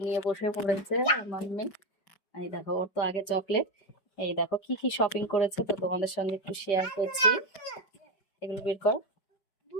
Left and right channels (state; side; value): late; right; 5.1 ms